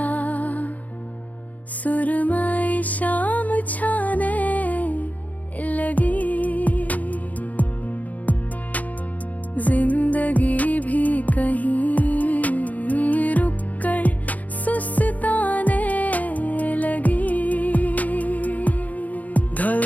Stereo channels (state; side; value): late; right; 0.076 ms